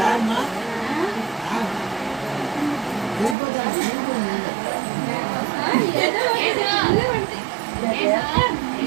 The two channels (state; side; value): drops out; left; at 3.4 s